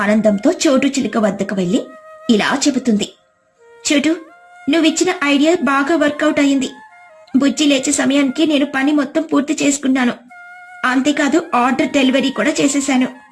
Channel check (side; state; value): both; identical; correlation 1.00